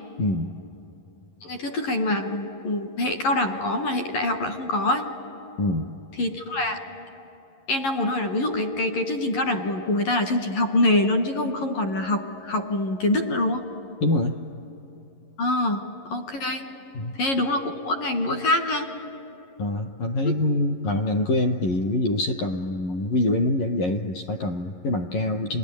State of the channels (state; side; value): late; right; 11 ms